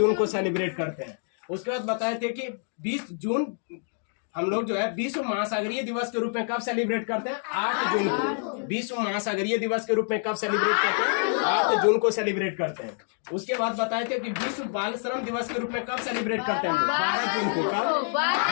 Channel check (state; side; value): silent; right; 58 dB below the other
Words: को सेलिब्रेट करते हैं। उसके बाद बताए थे कि 20 जून हम लोग जो है विश्व महासागरीय दिवस के रूप में कब सेलिब्रेट करते हैं? 8 जून को। विश्व महासागरीय दिवस के रूप में कब सेलिब्रेट करते हैं? 8 जून को सेलिब्रेट करते हैं। उसके बाद बताए थे कि विश्व बाल श्रम दिवस के रूप में कब सेलिब्रेट करते हैं? 12 जून को। कब?